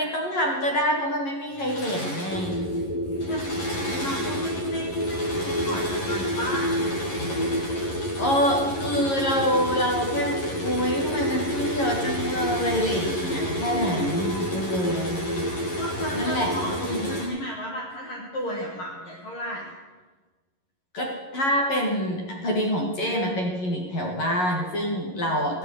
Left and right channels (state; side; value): late; right; 11 ms